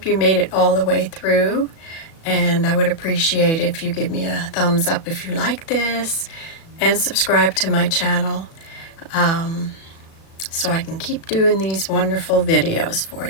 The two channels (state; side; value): late; right; 36 ms